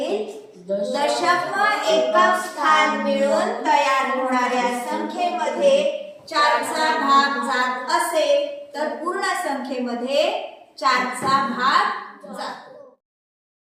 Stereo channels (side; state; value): both; identical; correlation 1.00